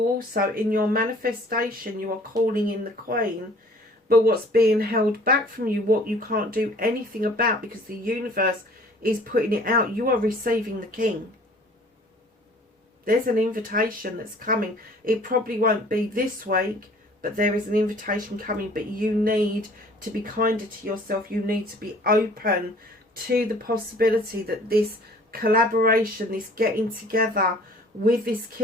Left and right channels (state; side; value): normal; both; correlation 0.52